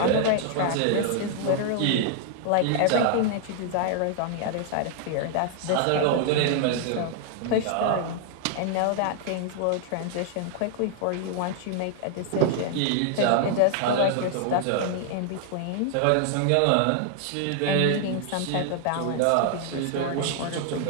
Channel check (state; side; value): different; both; correlation 0.00